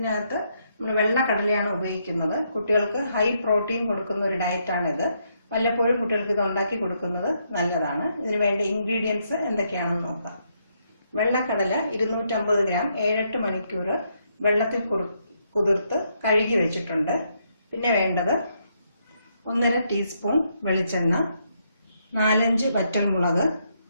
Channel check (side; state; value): both; inverted; correlation -0.76